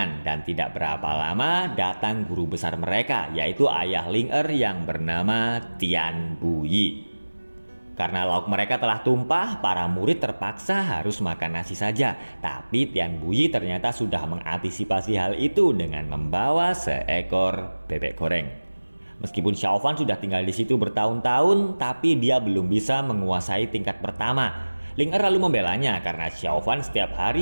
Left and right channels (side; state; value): both; inverted; correlation -1.00